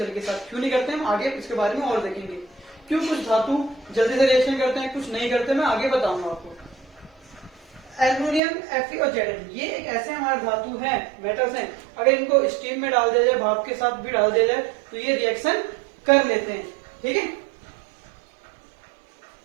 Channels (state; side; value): drops out; left; at 8.4 s